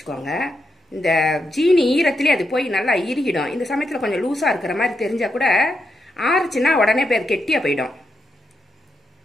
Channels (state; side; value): normal; both; correlation 0.84